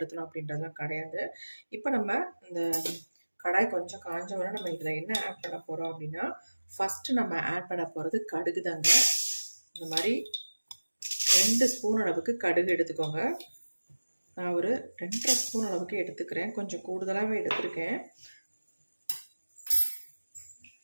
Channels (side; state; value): both; inverted; correlation -1.00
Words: அப்படின்றதுலாம் கிடையாது. இப்போ நம்ம இந்த கடாய் கொஞ்சம் காஞ்சவரை நம்ம இதில் என்ன ஆட் பண்ண போகிறோம் அப்படின்னா, ஃபஸ்ட்டு நம்ம ஆட் பண்ண போகிறது கடுகு தாங்க. இந்த மாதிரி 2 ஸ்பூன் அளவுக்கு கடுகு எடுத்துக்கோங்க. நான் ஒரு 2.5 ஸ்பூன் அளவுக்கு எடுத்துக்கிறேன். கொஞ்சம் கூடுதலாகவே எடுத்துருக்கேன்.